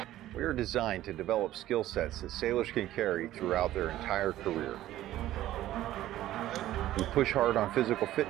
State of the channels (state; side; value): quieter; left; 14.1 dB